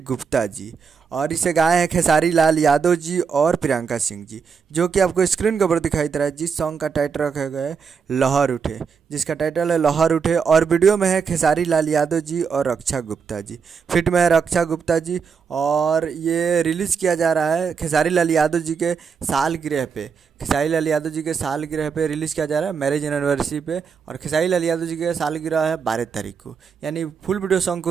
गुप्ता जी और इसे गाए हैं खेसारी लाल यादव जी और प्रियंका सिंह जी, जो कि आपको स्क्रीन के ऊपर दिखाई दे रहा है। जिस सॉन्ग का टाइटल रखा गया है लहर उठे, जिसका टाइटल है लहर उठे। और वीडियो में है खेसारी लाल यादव जी और रक्षा गुप्ता जी, फिट में है रक्षा गुप्ता जी। और ये रिलीज़ किया जा रहा है खेसारी लाल यादव जी के सालगिरह पे, खेसारी लाल यादव जी के सालगिरह पे रिलीज़ किया जा रहा है, मैरिज एनिवर्सरी पे। और खेसारी लाल यादव जी के सालगिरह है 12 तारीख को, यानी फुल वीडियो सॉन्ग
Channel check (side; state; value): left; quieter; 6.1 dB